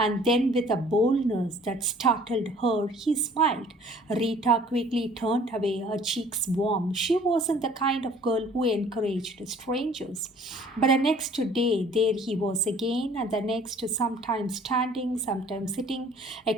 then, with a boldness that startled her, he smiled. Rita quickly turned away, her cheeks warm. She wasn't the kind of girl who encouraged strangers. But the next day, there he was again, and the next, sometimes standing, sometimes sitting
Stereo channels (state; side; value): normal; both; correlation 0.53